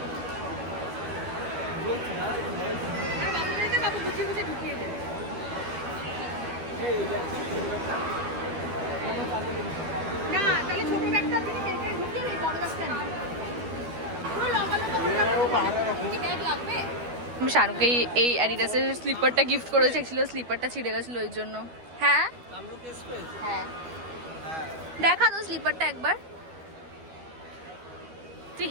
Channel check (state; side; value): late; left; 12 ms